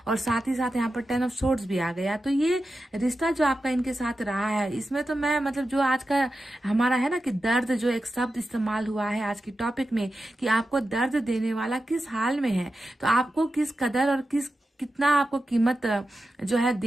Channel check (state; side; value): normal; both; correlation 0.91